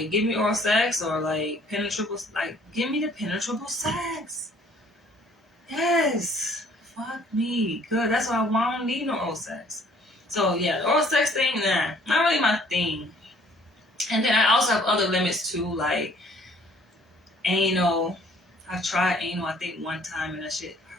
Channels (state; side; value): normal; both; correlation 0.58